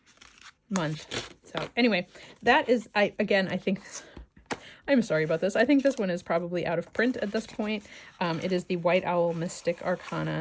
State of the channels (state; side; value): identical; both; correlation 1.00